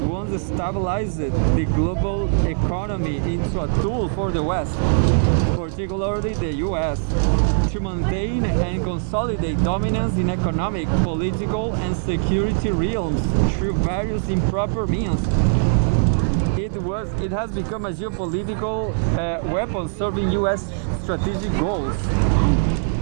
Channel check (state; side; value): silent; left; 60 dB below the other